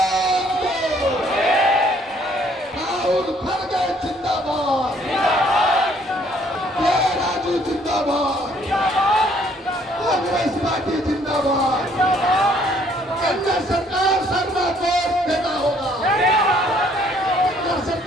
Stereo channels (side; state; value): both; normal; correlation 0.63